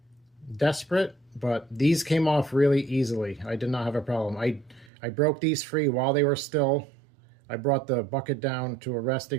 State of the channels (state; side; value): drops out; left; at 4.9 s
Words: desperate, but these came off really easily. I did not have a problem. I broke these free while they were still. I brought the bucket down to a